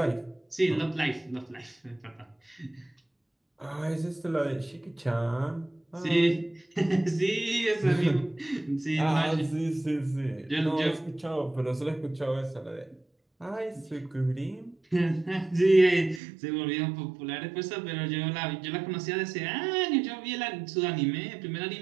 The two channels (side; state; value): left; drops out; at 16.2 s